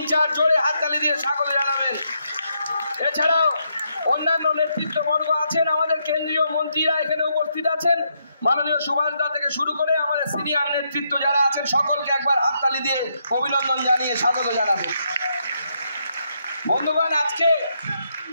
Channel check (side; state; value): both; inverted; correlation -0.78